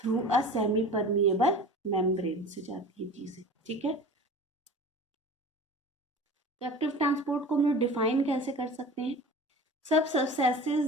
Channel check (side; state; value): both; normal; correlation 0.38